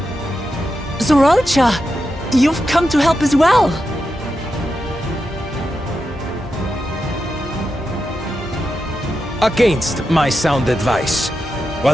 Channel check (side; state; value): both; normal; correlation 0.88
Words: Zoralcha, you've come to help as well. Against my sound advice.